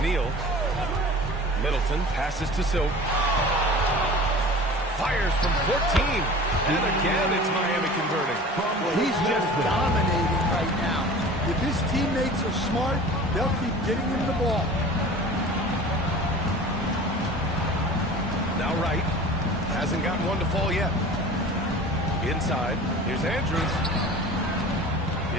Middleton passes to Silk. Fires from 14. And again, it's Miami converting. Well, he's just dominating right now. If his teammates are smart, they'll keep getting him the ball. Now Wright. Hasn't gotten one to fall yet. Inside. Here's Andrews.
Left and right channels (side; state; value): both; normal; correlation 0.40